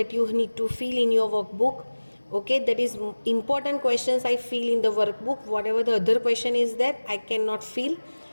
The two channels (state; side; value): inverted; both; correlation -1.00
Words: you need to fill in your workbook. Okay, that is important questions I fill in the workbook. Whatever the other question is that I cannot fill